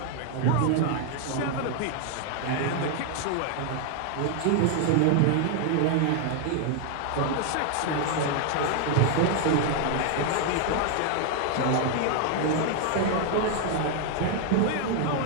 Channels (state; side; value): different; both; correlation 0.00